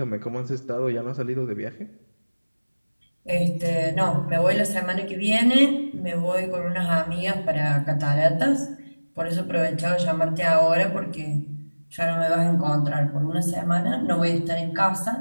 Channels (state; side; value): inverted; both; correlation -1.00